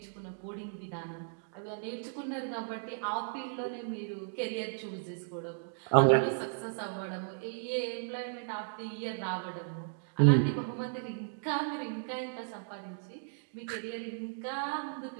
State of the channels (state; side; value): silent; left; digital silence